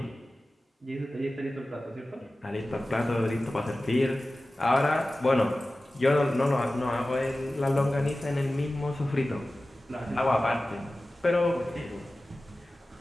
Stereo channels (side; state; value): both; normal; correlation 0.96